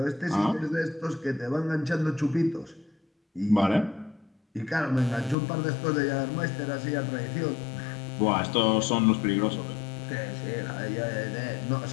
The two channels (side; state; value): right; drops out; at 5.4 s